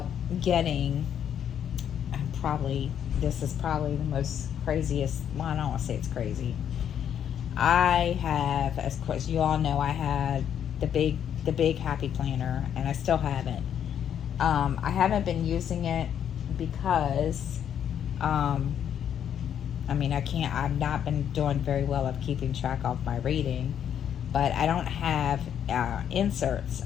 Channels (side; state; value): right; quieter; 9.1 dB